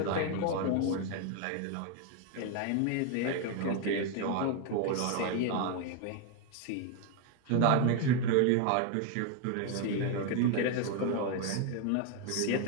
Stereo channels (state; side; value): different; both; correlation 0.01